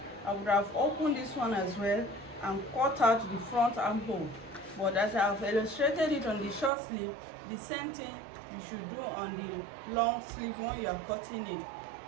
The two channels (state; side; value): drops out; left; at 6.7 s